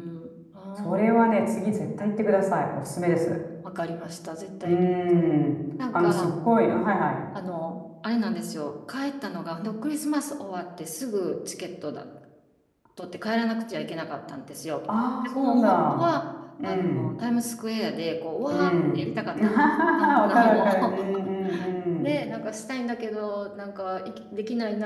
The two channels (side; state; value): both; identical; correlation 1.00